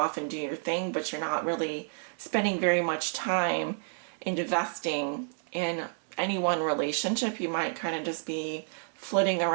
and do your thing, but you're not really spending very much time investing in any one relationship. You might kind of just be flitting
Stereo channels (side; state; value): left; silent; 58 dB below the other